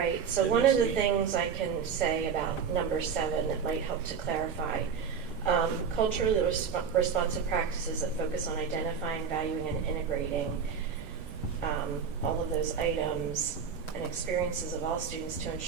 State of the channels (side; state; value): left; quieter; 6.5 dB